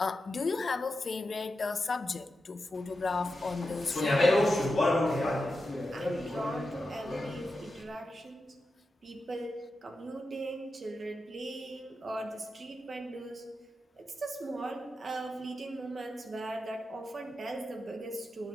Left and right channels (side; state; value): both; normal; correlation 0.90